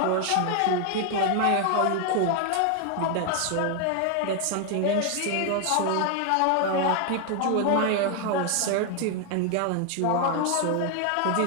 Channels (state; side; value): different; both; correlation 0.01